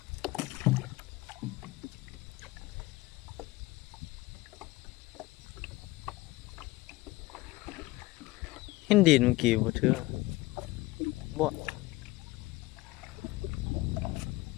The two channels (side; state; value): right; quieter; 19.9 dB